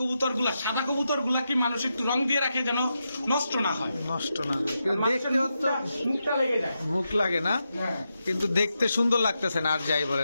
গুলা, সাদা কবুতর গুলা কি মানুষ একটু রং দিয়ে রাখে যেন নষ্ট না হয়, নষ্ট না হয়। কিন্তু দেখতে তো মুখটা লেগে যায়। মুখ লাগে না, হ্যাঁ কিন্তু দেখতে সুন্দর লাগতেছে না। আর যাই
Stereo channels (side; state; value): both; inverted; correlation -0.87